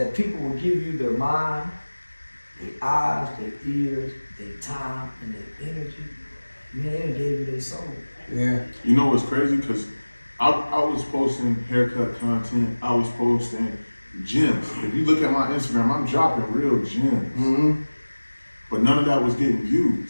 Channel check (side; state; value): both; inverted; correlation -1.00